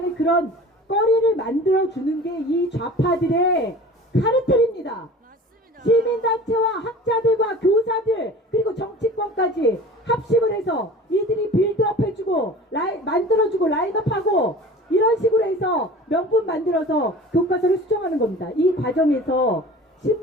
그런 거리를 만들어주는 게 이 좌파들의 카르텔입니다. 시민단체와 학자들과 교사들 그리고 정치권까지 합심을 해서 이들이 빌드업 해주고 만들어주고 라인업하고 이런 식으로 해서 명분 만들어서 교과서를 수정하는 겁니다. 이 과정에서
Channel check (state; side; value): normal; both; correlation 0.41